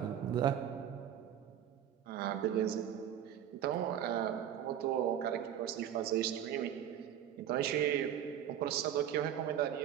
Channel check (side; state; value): left; quieter; 10.1 dB